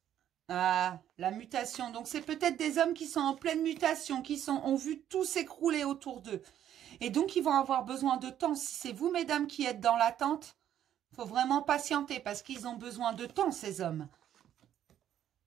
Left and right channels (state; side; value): quieter; left; 10.8 dB